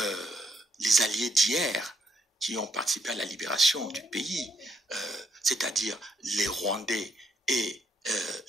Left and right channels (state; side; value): normal; both; correlation 0.74